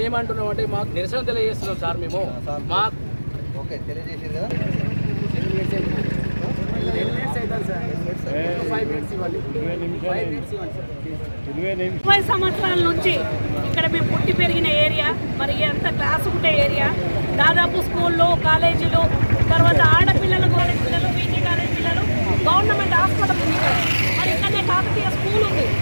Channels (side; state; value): both; inverted; correlation -1.00